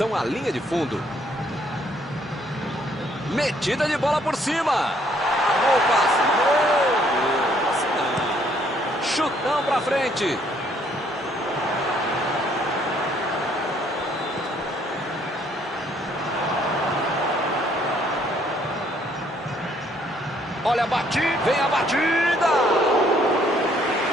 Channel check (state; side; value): normal; both; correlation 0.66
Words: à linha de fundo. Metida de bola por cima. Amou o passe. Meu Deus. Chutão pra frente. Olha a batida. Vem a batida.